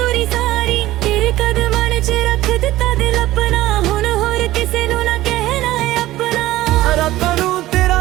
दूरी सारी तेरे कदमां च रख दिता दिल अपना हुण होर किसे नू ना कहना है अपना रातां नूं तेरा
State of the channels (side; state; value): left; quieter; 16.2 dB